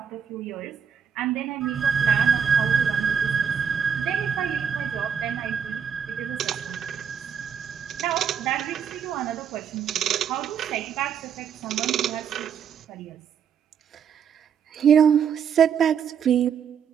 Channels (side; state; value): left; quieter; 7.4 dB